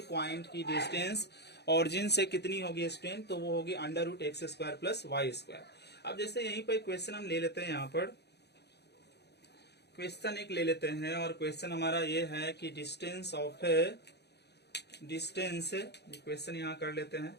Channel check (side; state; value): right; late; 0.49 ms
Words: पॉइंट की डिस्टेंस ओरिजिन से कितनी होगी स्टूडेंट, तो वो होगी under root x square plus y square. अब जैसे यहीं पर क्वेश्चन हम ले लेते हैं, यहाँ पर क्वेश्चन एक ले लेते हैं, और क्वेश्चन हमारा ये है कि distance of A, distance, question यहाँ कर लेते हैं,